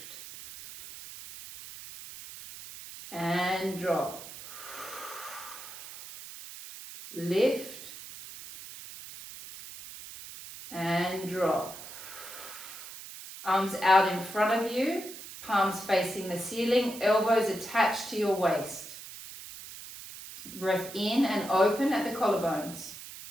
And drop. Lift. And drop. Arms out in front of you, palms facing the ceiling, elbows attached to your waist. Breath in and open at the collarbones.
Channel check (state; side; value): noise; right; hiss, 13 dB below the sound